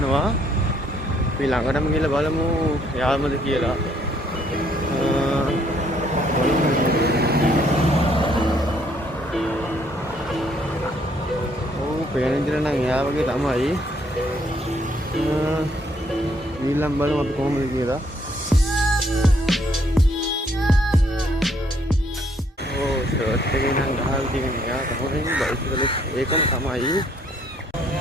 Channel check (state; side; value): normal; both; correlation 0.67